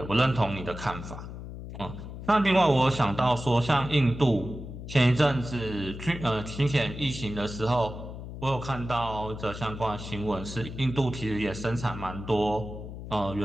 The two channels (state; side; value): noise; left; hum, 10 dB below the sound